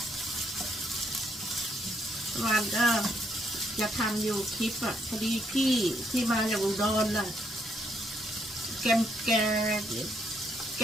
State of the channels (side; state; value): both; normal; correlation 0.72